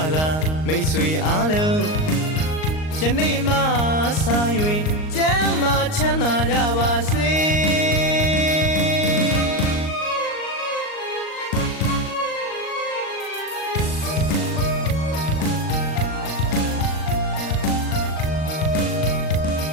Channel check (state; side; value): late; right; 38 ms